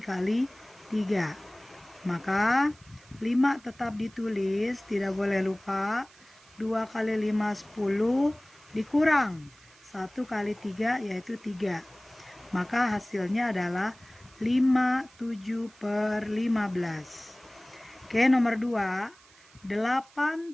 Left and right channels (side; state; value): right; noise; hiss, 26 dB below the sound